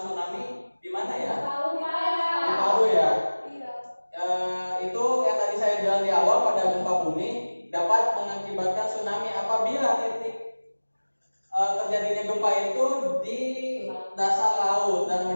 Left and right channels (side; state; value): both; inverted; correlation -1.00